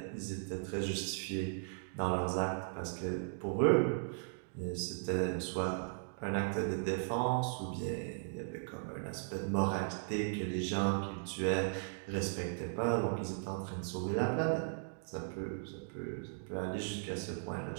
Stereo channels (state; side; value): silent; left; digital silence